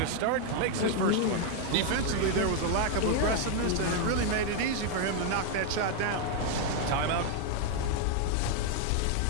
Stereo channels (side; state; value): both; different; correlation 0.00